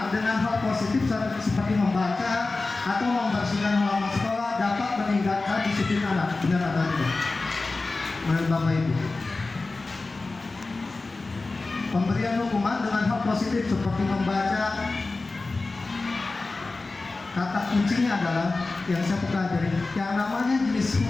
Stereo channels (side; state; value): right; quieter; 3.5 dB